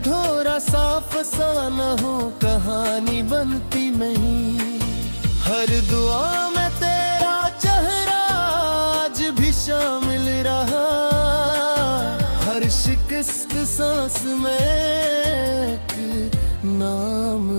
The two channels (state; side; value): inverted; both; correlation -1.00